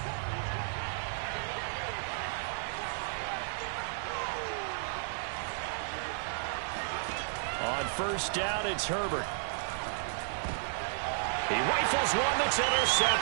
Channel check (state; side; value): silent; left; 56 dB below the other